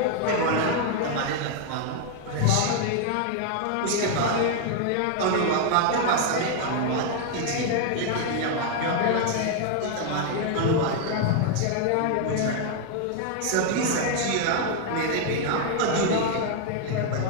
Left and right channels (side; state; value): both; different; correlation 0.00